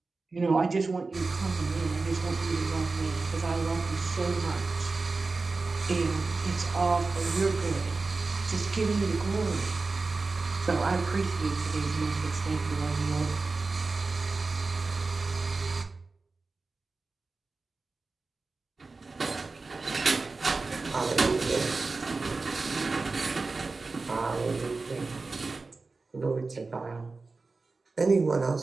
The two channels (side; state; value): left; quieter; 3.8 dB